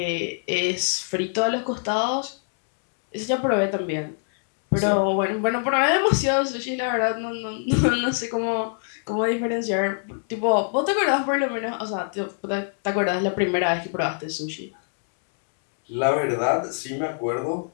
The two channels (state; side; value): silent; right; digital silence